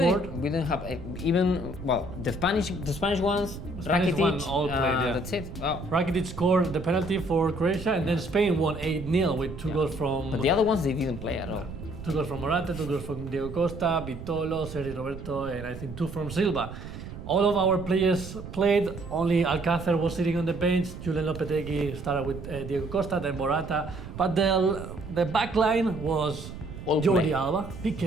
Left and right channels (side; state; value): right; noise; rumble, 11 dB below the sound